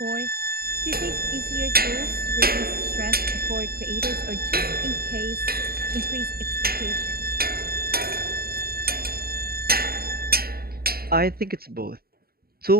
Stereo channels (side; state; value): left; late; 0.45 ms